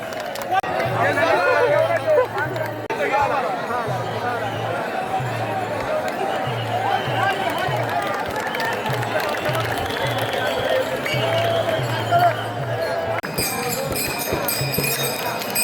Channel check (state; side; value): identical; both; correlation 1.00